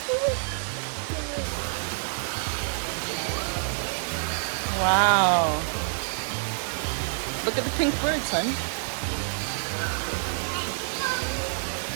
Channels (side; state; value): left; silent; digital silence